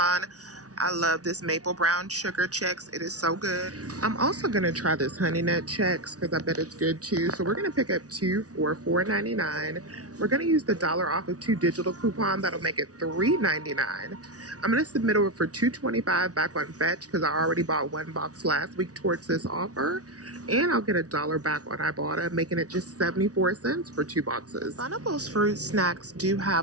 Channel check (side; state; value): left; late; 0.68 ms